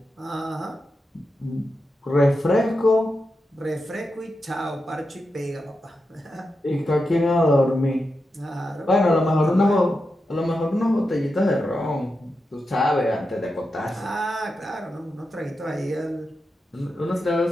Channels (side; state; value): both; normal; correlation 0.88